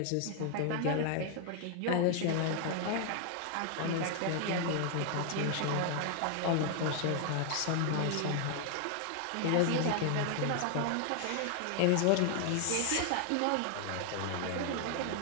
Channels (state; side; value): different; both; correlation 0.00